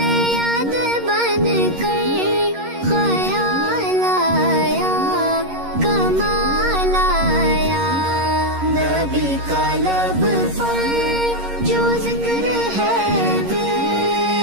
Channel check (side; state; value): left; late; 11 ms